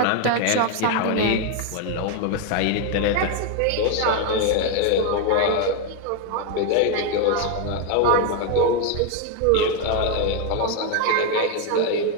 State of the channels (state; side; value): different; both; correlation 0.01